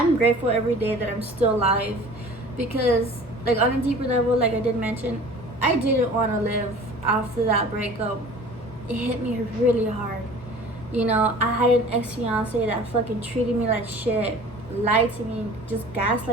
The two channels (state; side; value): normal; both; correlation 0.44